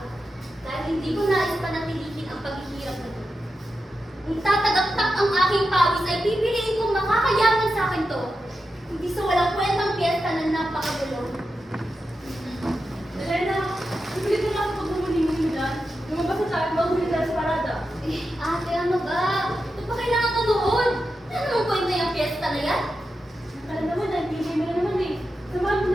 dahil hindi ko nais panatilihin ang paghihirap na ito. Kung tatagaktak ang aking pawis ay pipiliin kong makakayaman sa akin to. Hindi sa walang kwentang piyesta na napakagulo. Elena, hindi ko lang pagmumuling dyan. Lumabas na tayo, maghuli tayo sa parada. Ate, ano ba? Ito pa kailangan manood. Ano namang kwenta yung piyesta na yan? Alam naman, nag-DJ mo na naman eh. Samahan mo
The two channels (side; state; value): both; normal; correlation 0.89